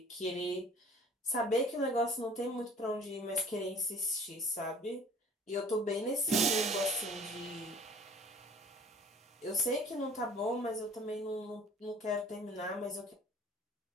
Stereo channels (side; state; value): both; normal; correlation 0.49